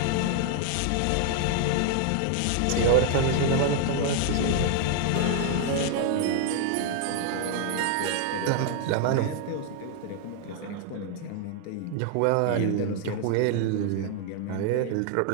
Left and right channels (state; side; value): different; both; correlation 0.00